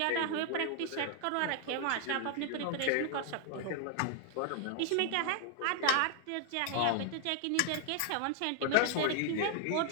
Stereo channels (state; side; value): different; both; correlation 0.00